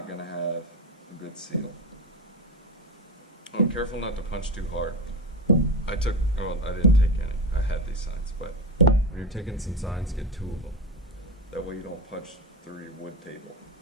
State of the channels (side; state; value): both; normal; correlation 0.21